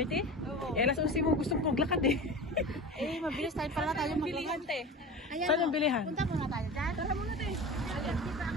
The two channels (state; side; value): normal; both; correlation 0.32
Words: Oo. Alas 11 mo gustong maglakad eh. Mabilis tayo pala tayo maglakad. Saan ang bilihan? Punta muna tayo dyan. Tara muna tayo.